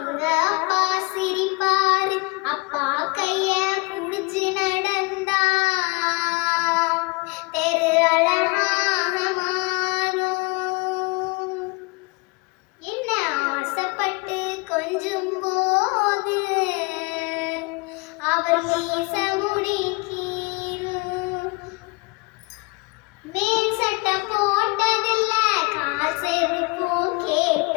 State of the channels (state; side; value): quieter; right; 27.2 dB